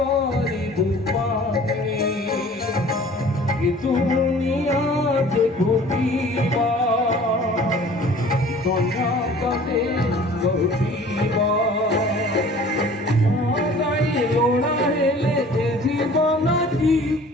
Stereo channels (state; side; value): normal; both; correlation 0.48